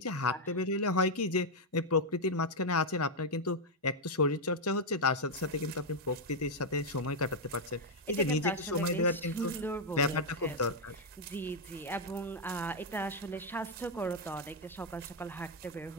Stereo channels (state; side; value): normal; both; correlation 0.00